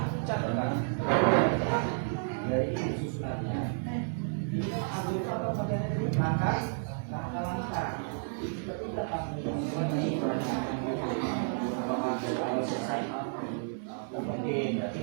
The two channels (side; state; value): left; silent; 57 dB below the other